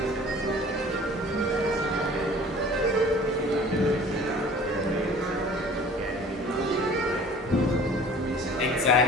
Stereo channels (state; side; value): normal; both; correlation 0.47